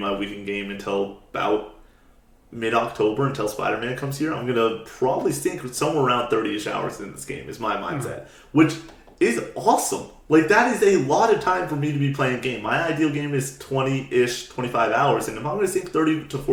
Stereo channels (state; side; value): identical; both; correlation 1.00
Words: weekend game until about mid-October, until Spider-Man comes here. I'm going to probably sink somewhere around 30-ish hours in this game is my mindset, which is awesome. Like, that is a lot of time for me to be playing a game. My ideal game is 20-ish, 25 hours. And if I'm going to sink 30 to